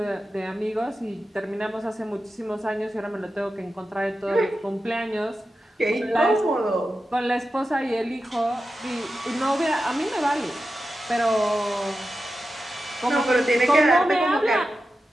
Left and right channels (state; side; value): normal; both; correlation 0.91